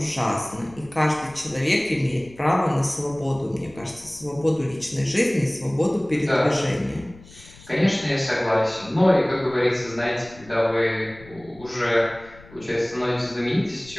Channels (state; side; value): noise; left; rumble, 21 dB below the sound